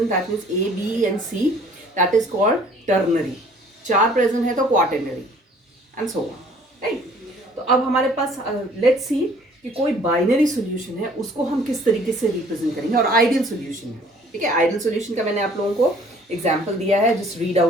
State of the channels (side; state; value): both; normal; correlation 0.56